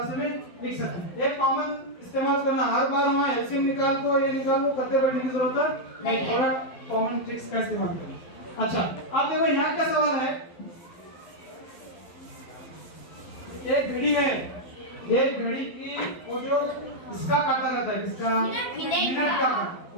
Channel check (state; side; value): late; right; 12 ms